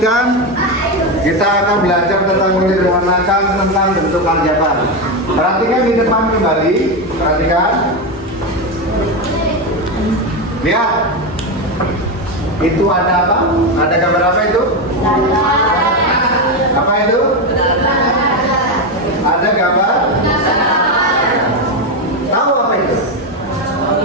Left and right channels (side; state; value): both; normal; correlation 0.11